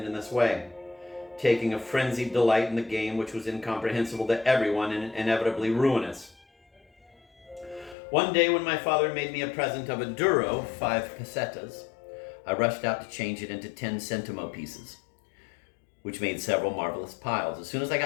in this way, taking a frenzied delight in the game which was incomprehensible to everyone and inevitably ruinous. One day when my father made me a present of a duro, 5 pesetas, I rushed out to change it into 10 centimo pieces, which made several marvelous piles. As soon as I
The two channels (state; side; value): drops out; right; at 8.0 s